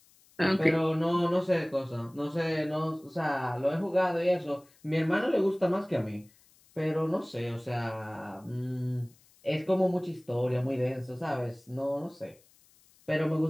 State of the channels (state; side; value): noise; left; hiss, 30 dB below the sound